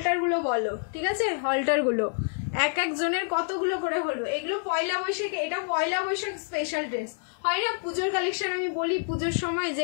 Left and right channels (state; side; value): silent; right; 60 dB below the other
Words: গুলো বলো, ঠিক আছে? হলটার গুলো এক একজনের কতগুলো করে হলো? এগুলো পয়লা বৈশাখ, এটা পয়লা বৈশাখ স্পেশাল ড্রেস হয় না, পুজোর কালেকশন আমি বলি পুজোর সময়,